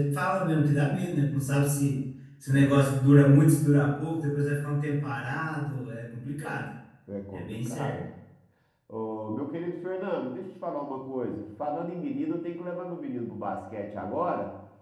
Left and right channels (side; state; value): both; identical; correlation 1.00